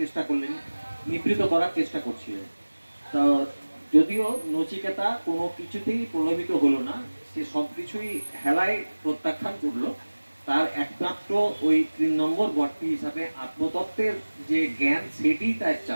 করলেন, নিবৃত করার চেষ্টা করছিলেন। তা যদিও নচিকেতা কোনো কিছুতেই প্রলোভিত হলো না, সে সব কিছুই হেলায় প্রত্যাখ্যান করলো। তার একমাত্র ওই 3 নম্বর বরটি হিসাবে আত্মতত্ত্বের যে জ্ঞান, সেটি তার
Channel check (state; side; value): inverted; both; correlation -1.00